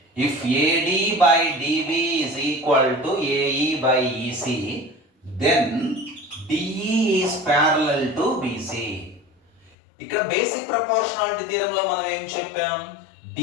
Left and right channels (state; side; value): drops out; right; at 9.7 s